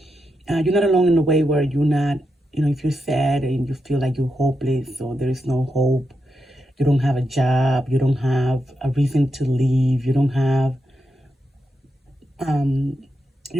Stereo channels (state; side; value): normal; both; correlation 0.85